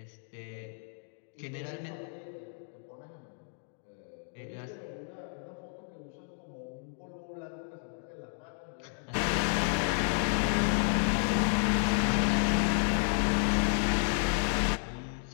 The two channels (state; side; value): silent; right; 57 dB below the other